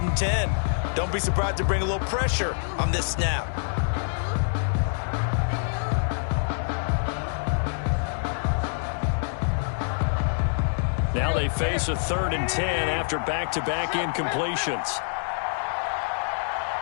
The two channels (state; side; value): silent; right; digital silence